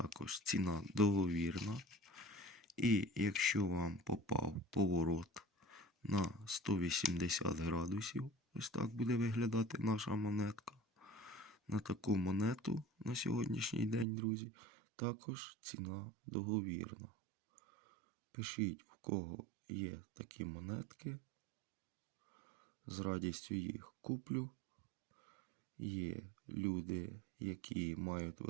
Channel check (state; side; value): drops out; left; at 14.1 s